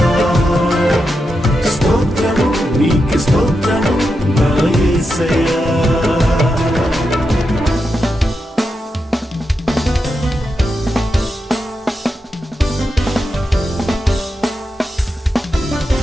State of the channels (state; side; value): normal; both; correlation 0.87